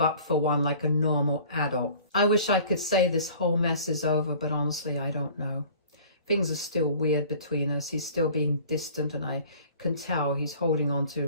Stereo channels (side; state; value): both; inverted; correlation -0.48